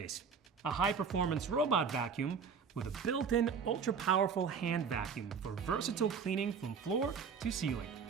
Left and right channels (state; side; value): quieter; left; 6.1 dB